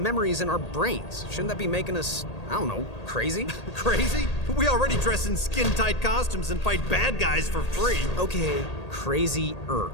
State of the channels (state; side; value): late; right; 1.8 ms